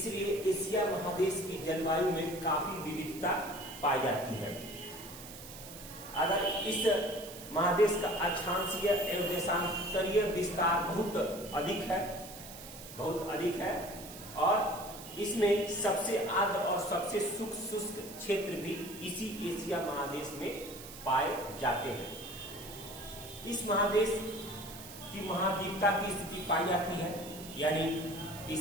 एशिया महादेश की जलवायु में काफी विविधता पाई जाती है। अगर इस महादेश का अक्षांशीय एवं देशांतरीय विस्तार बहुत अधिक है और इसमें सबसे आर्द्र और सबसे शुष्क क्षेत्र भी इसी एशिया महादेश में पाए जाते हैं। इस महादेश की महाद्वीपता की स्थिति पाई जाती है, यानी इस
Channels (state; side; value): noise; right; hiss, 14 dB below the sound